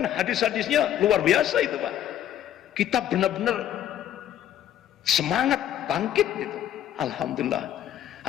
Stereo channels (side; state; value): right; quieter; 11.2 dB